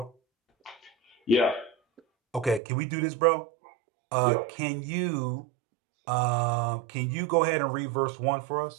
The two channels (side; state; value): left; drops out; at 2.6 s